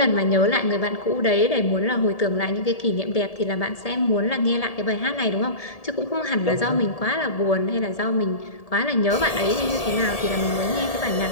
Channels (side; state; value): right; late; 1.7 ms